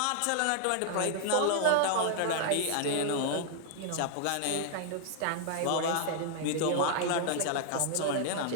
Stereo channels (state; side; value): different; both; correlation 0.00